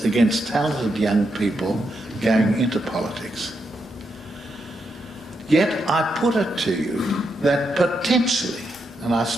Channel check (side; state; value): both; normal; correlation 0.82